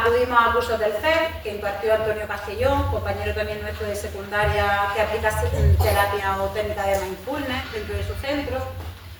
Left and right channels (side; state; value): both; identical; correlation 1.00